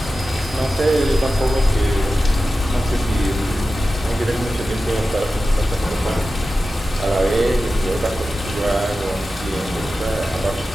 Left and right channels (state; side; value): normal; both; correlation 0.93